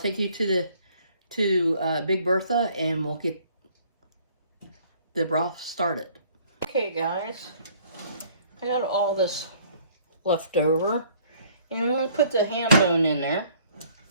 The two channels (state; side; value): inverted; both; correlation -0.58